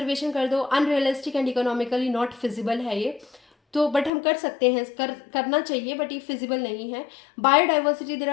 कर दो, unrealistic and economically not feasible है ये, तो बट हम कर सकते हैं, करना चाहिए, बट ये फिजिबल नहीं है। Biodiversity, there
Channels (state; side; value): drops out; right; at 4.1 s